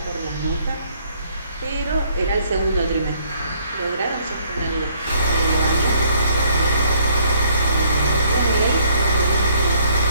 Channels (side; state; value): both; inverted; correlation -0.66